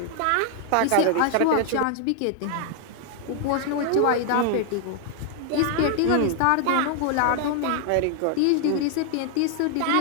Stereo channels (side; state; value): both; different; correlation 0.00